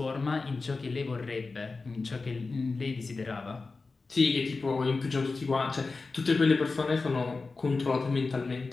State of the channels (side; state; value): right; quieter; 3.9 dB